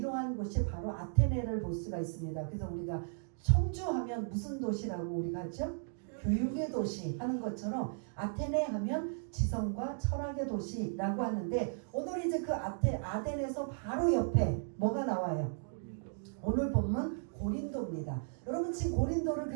곳이 바로 아테네를 볼 수가 있습니다. 그래서 우리가 청주하면 무슨 도시라고 우리가 하죠? 교육의 도시 하는 것처럼 아테네 하면 지성과 철학의 도시라고 하는데 오늘 이제 그 아덴에서 바로 옆에 뭐가 나와요? 오늘 본문 고린도입니다. 여러분 지금 고린도를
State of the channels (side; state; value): left; silent; digital silence